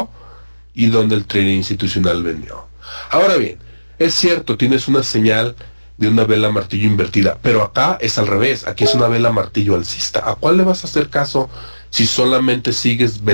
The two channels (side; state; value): both; inverted; correlation -1.00